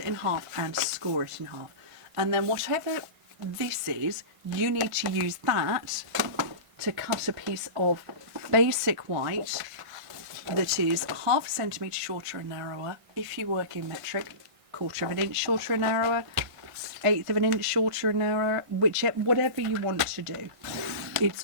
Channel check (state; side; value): late; left; 1.5 ms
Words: in half and score it in half. And then whatever this is, you need to use that to cut a piece of basic white that is ½ a centimetre shorter and narrower. If you work in metric, 1/4 of an inch shorter and narrower, 1/8 of an inch shorter and narrower, whatever you want to do.